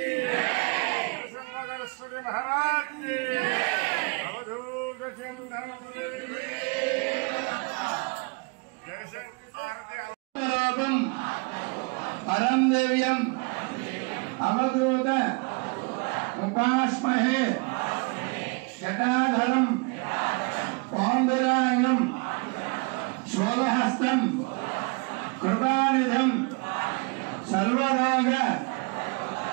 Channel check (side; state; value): left; quieter; 31.3 dB